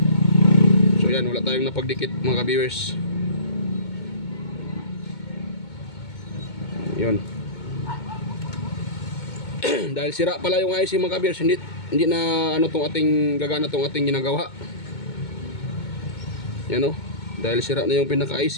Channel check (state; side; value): late; right; 2.2 ms